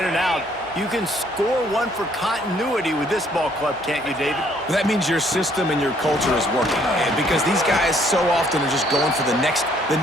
and out, you can score one for continuity with this ball club, can't you, David? That means your system and your culture is working. And because these guys so often are just going for the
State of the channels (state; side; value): normal; both; correlation 0.64